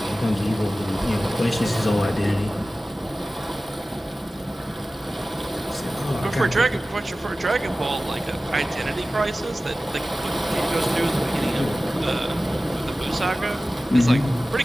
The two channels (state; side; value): normal; both; correlation 0.96